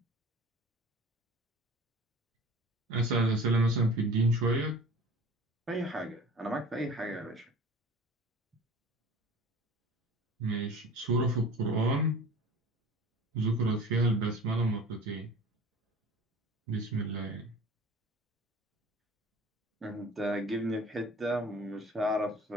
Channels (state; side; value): normal; both; correlation 0.42